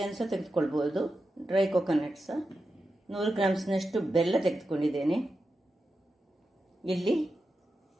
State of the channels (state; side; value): normal; both; correlation 0.90